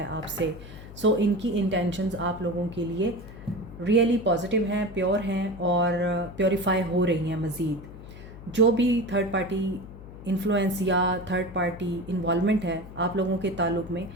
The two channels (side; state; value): left; noise; hum, 15 dB below the sound